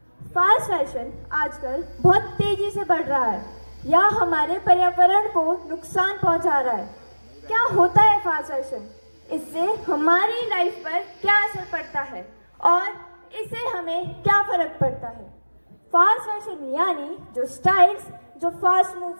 फास्ट फैशन आजकल बहुत तेजी से बढ़ रहा है या हमारे पर्यावरण को नुकसान पहुंचा रहा है। क्या होता है फास्ट फैशन? इससे हमारी लाइफ पर क्या असर पड़ता है और इससे हमें क्या फर्क पड़ता है? फास्ट फैशन यानी जो स्टाइल्स जो फास्ट मूव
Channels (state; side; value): inverted; both; correlation -1.00